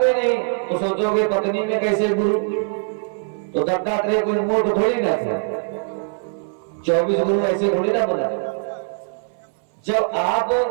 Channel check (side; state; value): left; silent; 62 dB below the other